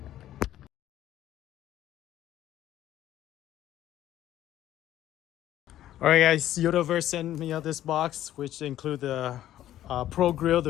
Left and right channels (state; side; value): quieter; right; 12.7 dB